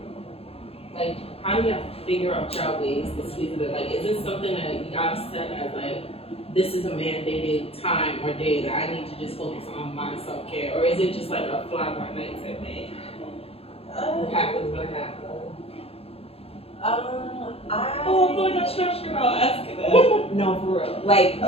Like how do you figure out your ways to squeeze it in? Like is this something that you gotta set as like this is a mandated time or day that I need to just focus on my self-care? Or is it just like a fly by night type thing? What happens when it happens? I feel like I'm stressed out asking that. No, for real. Like,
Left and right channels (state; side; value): late; right; 0.28 ms